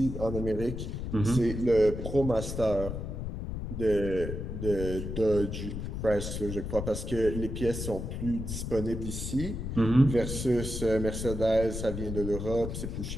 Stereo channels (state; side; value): noise; left; rumble, 5 dB below the sound